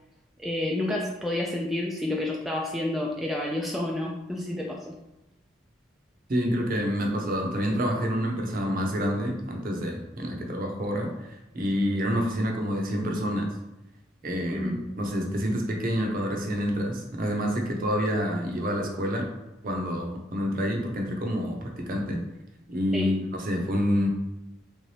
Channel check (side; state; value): both; normal; correlation 0.73